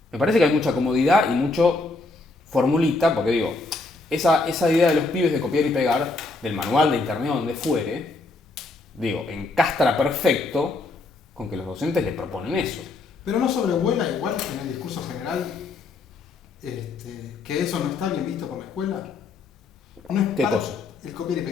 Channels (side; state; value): right; quieter; 3.5 dB